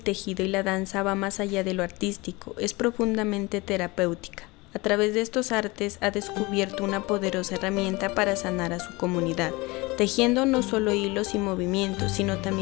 tejido y la danza va más allá de lo artístico, es profundamente terapéutica. A través de estos artes ha descubierto una poderosa herramienta para sanar a su comunidad, tejiendo no solo hilos y movimientos, sino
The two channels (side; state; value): right; quieter; 23.7 dB